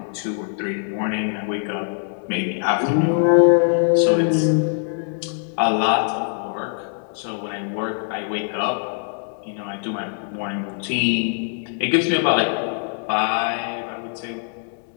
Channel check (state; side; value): silent; right; 64 dB below the other